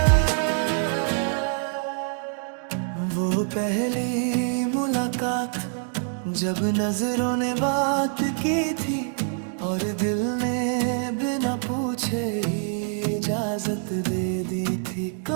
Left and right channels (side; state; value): left; silent; 61 dB below the other